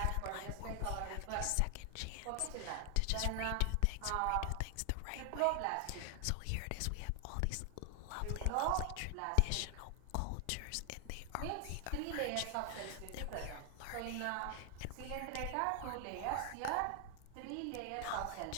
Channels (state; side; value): different; both; correlation 0.00